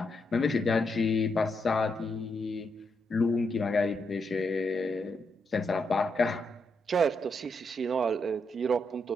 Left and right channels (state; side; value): normal; both; correlation 0.81